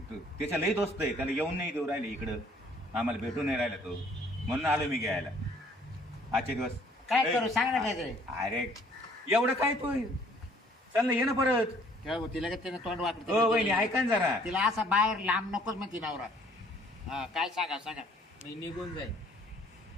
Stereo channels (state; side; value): normal; both; correlation 0.59